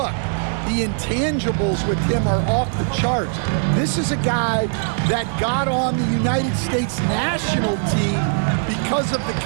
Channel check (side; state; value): left; silent; 65 dB below the other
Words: The intangibles with him are off the charts. This is a guy that got on the United States national team because of the